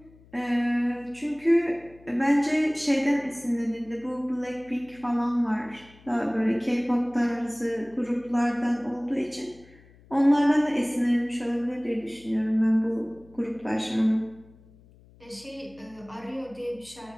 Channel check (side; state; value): left; noise; hum, 26 dB below the sound